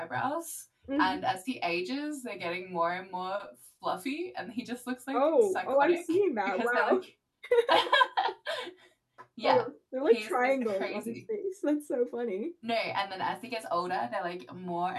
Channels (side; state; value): both; identical; correlation 1.00